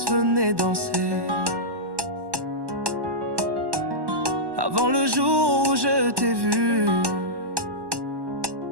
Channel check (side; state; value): left; late; 1.1 ms